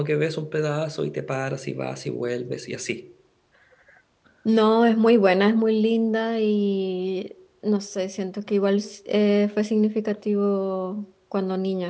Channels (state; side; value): identical; both; correlation 1.00